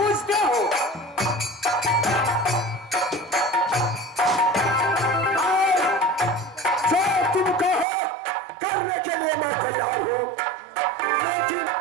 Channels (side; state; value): left; drops out; at 7.9 s